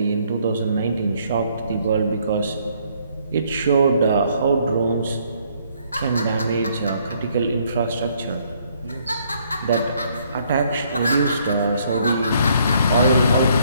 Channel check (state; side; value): inverted; both; correlation -0.67